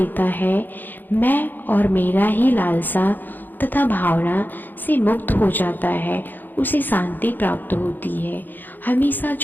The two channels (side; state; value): right; late; 0.089 ms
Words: है, मैं और मेरा ही लालसा तथा भावना से मुक्त हो जाता है, उसे शांति प्राप्त होती है। हमेशा